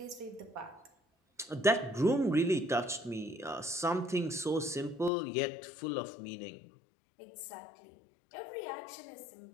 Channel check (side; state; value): right; drops out; at 5.1 s